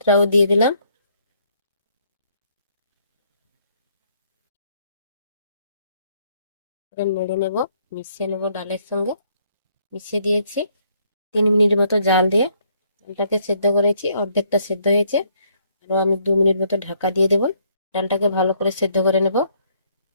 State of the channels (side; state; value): both; inverted; correlation -0.69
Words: দিয়ে দিলাম। নেড়ে নেব, মিশিয়ে নেব ডালের সঙ্গে। মিশিয়ে দিয়েছি। 3 মিনিট মতো জাল দিয়ে ডালটাকে সেদ্ধ করেছি, অর্ধেকটা সেদ্ধ হয়েছে। আরও আমি 2 মিনিট মতো ঢাকা দিয়ে দেবো। ডালটাকে ভালো করে সেদ্ধ করে নেব।